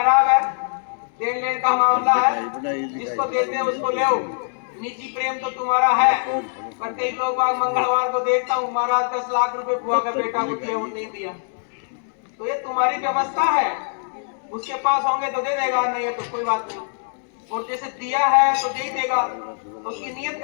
है, देन लेन का मामला है, जिसको देते हैं उसको ले। निजी प्रेम तो तुम्हारा है, पर कई लोग मंगलवार को देखता हूँ महाराज 10 लाख रुपए बुआ का बेटा को दिया, वो नहीं दिया। तो ये तुम्हारी व्यवस्था है, उसके पास होंगे तो दे देगा, नहीं है तो कोई बात नहीं। और जैसे दिया है तो दे ही देगा, तो उसकी नीयत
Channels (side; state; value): right; silent; digital silence